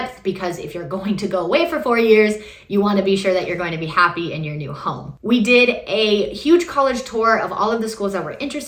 because if you're going to go away for 4 years, you want to be sure that you're going to be happy in your new home. We did a huge college tour of all of the schools that were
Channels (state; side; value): identical; both; correlation 1.00